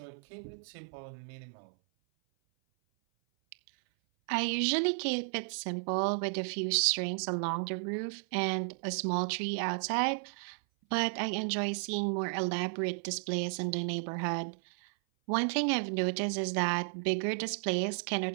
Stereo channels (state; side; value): silent; left; 56 dB below the other